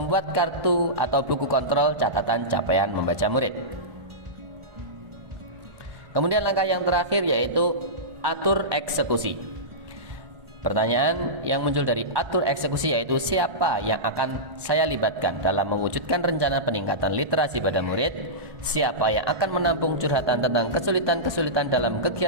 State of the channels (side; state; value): left; late; 1.1 ms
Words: kartu atau buku kontrol catatan capaian membaca murid. Kemudian langkah yang terakhir yaitu atur eksekusi. Pertanyaan yang muncul dari atur eksekusi yaitu siapa yang akan saya libatkan dalam mewujudkan rencana peningkatan literasi pada murid, siapa yang akan menampung curhatan tentang kesulitan-kesulitan dalam